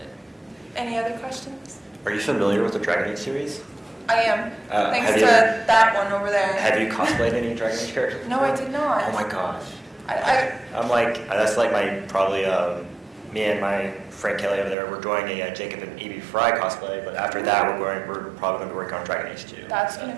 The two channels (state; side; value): drops out; left; at 14.8 s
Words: it. Any other questions? Are you familiar with the Dragon Age series? I am. Thanks have to you- that one over there. Have you cosplayed any Dragon Age characters? No, I did not. Oh my gosh. I I'm like, that's like my, probably, me and my friend Kelly over there, we're doing a Jacob and Evie Fry cosplay, but after that, we're probably going to work on Dragon Age 2. that's gonna